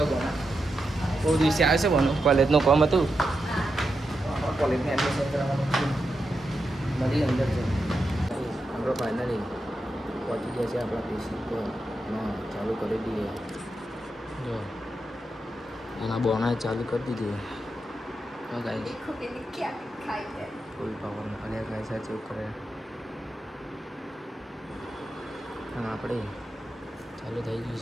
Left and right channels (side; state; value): both; normal; correlation 0.87